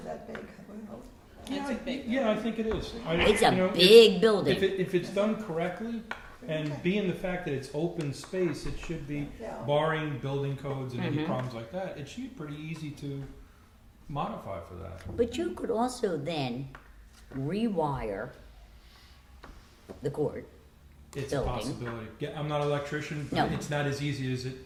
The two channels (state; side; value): identical; both; correlation 1.00